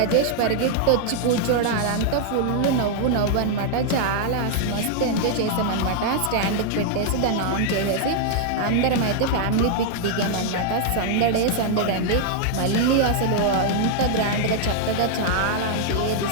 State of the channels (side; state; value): both; different; correlation -0.01